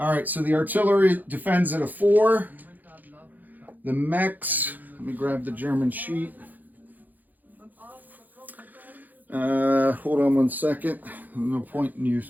right, so the artillery defends at a 4. The mechs, let me grab the German sheet. Hold on 1 second. No point in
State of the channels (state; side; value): late; left; 0.084 ms